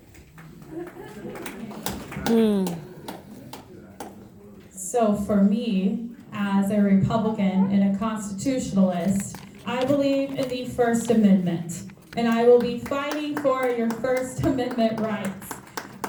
So for me, as a Republican and a constitutionalist, I believe in the First Amendment, and I will be fighting for your First Amendment rights.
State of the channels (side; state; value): both; identical; correlation 1.00